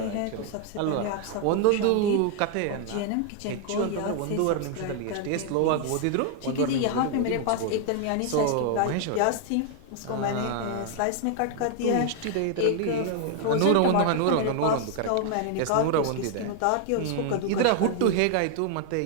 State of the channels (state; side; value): different; both; correlation 0.00